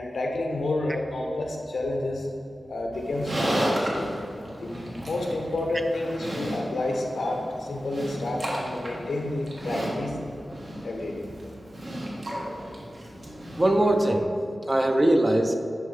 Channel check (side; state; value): both; normal; correlation 0.93